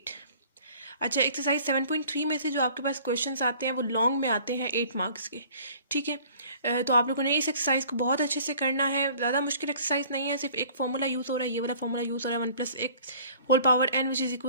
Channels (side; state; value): both; inverted; correlation -0.51